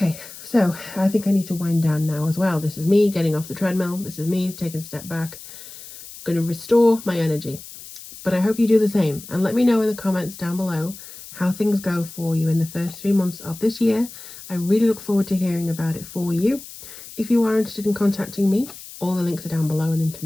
so I think I need to wind down now as well. This is me getting off the treadmill. This is me taking a step back. I'm going to restore my energy. But I hope you do the same. And let me know in the comments down below how things go for you in the first 3 months of this year. I really look forward to hearing about it for you. If you are interested in contacting me, all the links are down below and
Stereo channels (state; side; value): noise; left; hiss, 15 dB below the sound